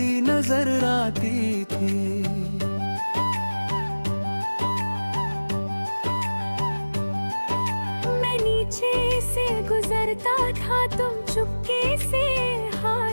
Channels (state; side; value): inverted; both; correlation -1.00